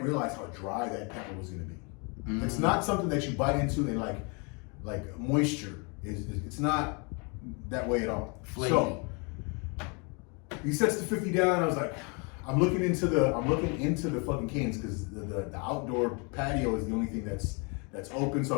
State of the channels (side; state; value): right; quieter; 33.2 dB